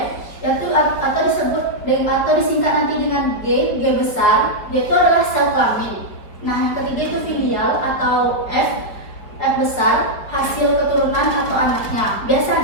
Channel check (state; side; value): late; right; 5.0 ms